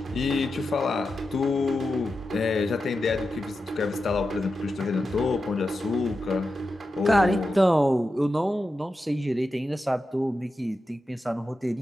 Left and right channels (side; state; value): both; normal; correlation 0.90